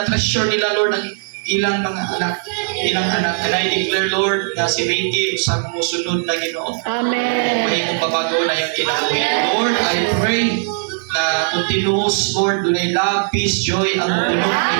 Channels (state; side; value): silent; left; digital silence